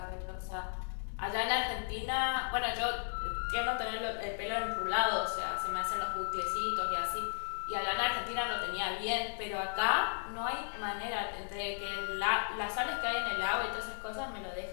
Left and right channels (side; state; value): right; silent; 54 dB below the other